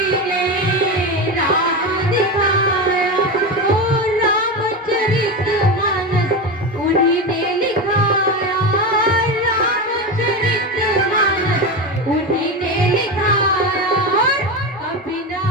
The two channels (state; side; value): normal; both; correlation 0.19